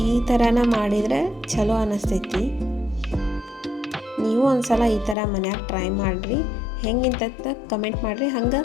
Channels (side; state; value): right; drops out; at 5.2 s